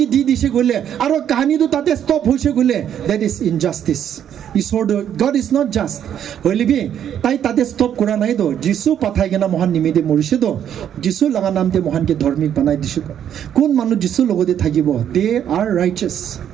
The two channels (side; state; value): left; quieter; 9.6 dB